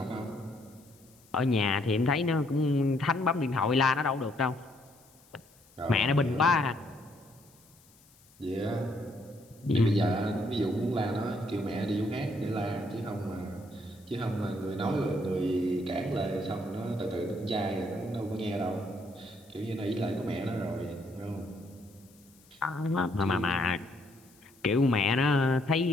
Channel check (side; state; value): left; noise; hiss, 28 dB below the sound